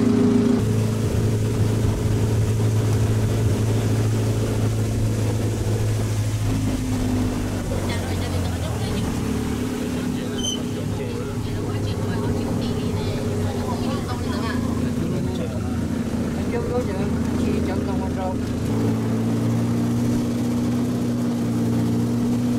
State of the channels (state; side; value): identical; both; correlation 1.00